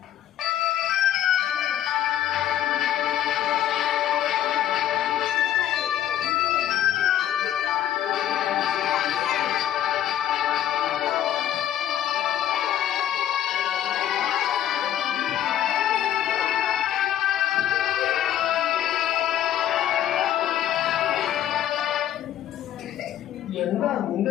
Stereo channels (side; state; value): right; quieter; 11.3 dB